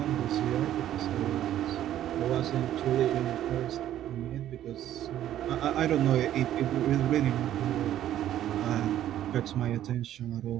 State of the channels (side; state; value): left; quieter; 12.0 dB